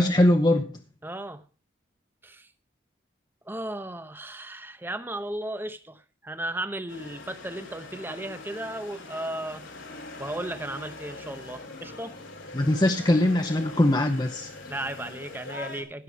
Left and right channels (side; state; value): both; normal; correlation 0.80